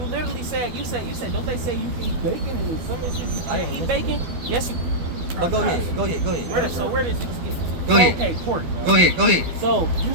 literally said. You said. Don't they say you can eat bacon and some instances you can't eat bacon? Yes, you. But go ahead. Where does this Go ahead. Okay, pork. Go ahead. So you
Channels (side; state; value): left; late; 12 ms